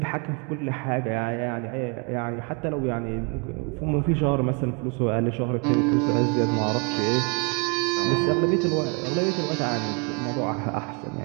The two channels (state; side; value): quieter; left; 34.4 dB